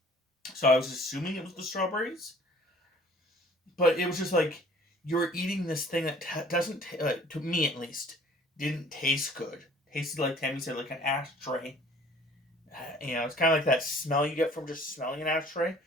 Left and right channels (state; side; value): normal; both; correlation 0.52